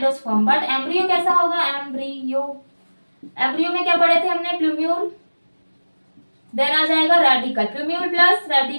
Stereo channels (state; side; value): inverted; both; correlation -1.00